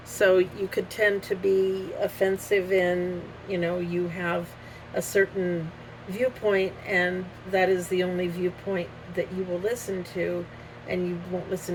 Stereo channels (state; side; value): identical; both; correlation 1.00